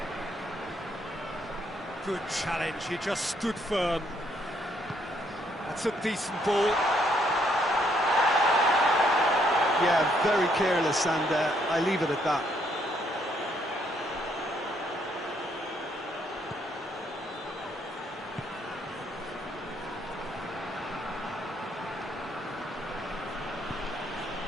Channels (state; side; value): normal; both; correlation 0.70